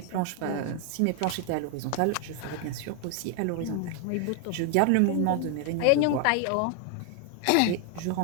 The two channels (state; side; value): different; both; correlation 0.00